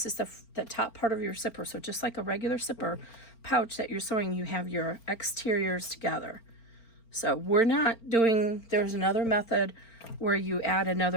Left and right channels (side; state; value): right; late; 4.4 ms